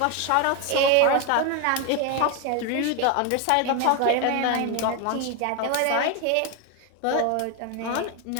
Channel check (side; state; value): both; different; correlation 0.01